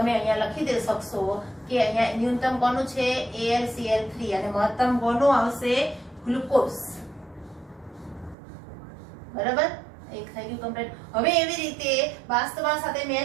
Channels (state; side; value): drops out; left; at 8.3 s